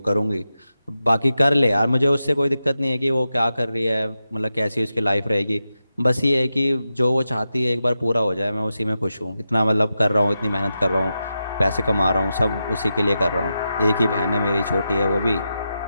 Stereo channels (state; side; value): inverted; both; correlation -0.89